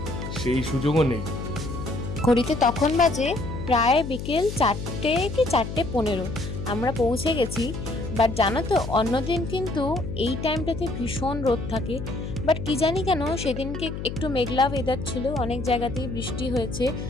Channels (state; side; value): noise; left; hum, 7 dB below the sound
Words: সেই সুযোগও নেই। ঘড়িতে তখন বাজে প্রায় বিকেল 4টে কি 4:15 আমরা পৌঁছে গেছি। বাট জানো তো অন্যদিন কিন্তু এই টাইমটাতে ভীষণ রোদ থাকে, বাট কি জানি কেন সেদিনকে একটু মেঘলা ওয়েদার ছিল, অনেক জায়গাতেই বৃষ্টি হয়েছে।